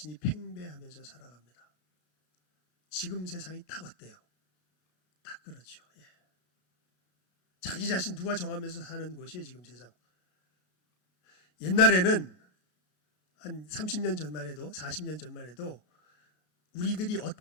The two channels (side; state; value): right; late; 33 ms